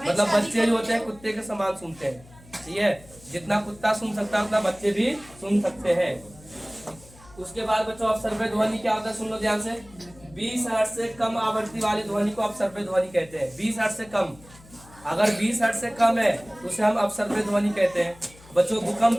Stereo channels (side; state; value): left; noise; hum, 23 dB below the sound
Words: बच्चे जो होते हैं कुत्ते के समान सुनते हैं, ठीक है। जितना कुत्ता सुन सकता है उतना बच्चे भी सुन सकते हैं। उसके बाद बच्चों अपसर्व्य ध्वनि क्या होता है, सुन लो ध्यान से। 20 हर्ट्ज से कम आवृत्ति वाली ध्वनि को अपसर्व्य ध्वनि कहते हैं। 20 हर्ट्ज से कम, अगर 20 हर्ट्ज से कम है तो उसे हम अपसर्व्य ध्वनि कहते हैं। बच्चों